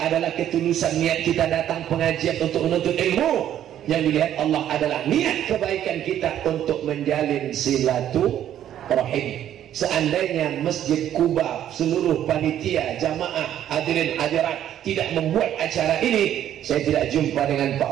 adalah ketulusan niat kita datang pengajian untuk menuntut ilmu, yang dilihat Allah adalah niat kebaikan kita untuk menjalin silaturahim. Seandainya Masjid Kuba, seluruh panitia, jamaah, hadirin hadirat tidak membuat acara ini, saya tidak jumpa dengan Pak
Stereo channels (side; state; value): left; quieter; 11.0 dB